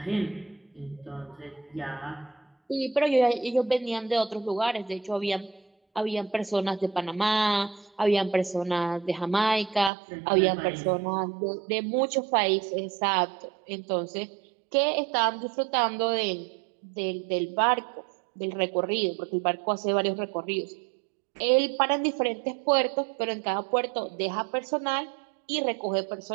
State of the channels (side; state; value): left; drops out; at 9.9 s